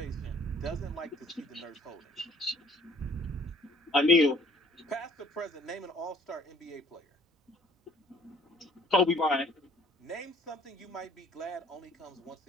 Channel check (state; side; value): normal; both; correlation 0.57